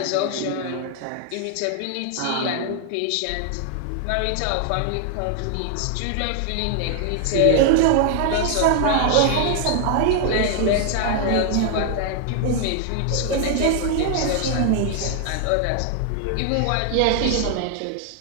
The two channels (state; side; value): different; both; correlation 0.00